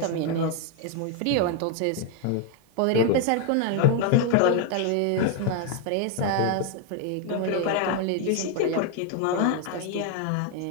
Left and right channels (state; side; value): different; both; correlation 0.01